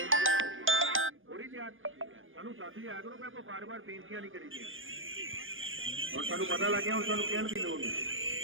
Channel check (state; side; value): late; left; 0.59 ms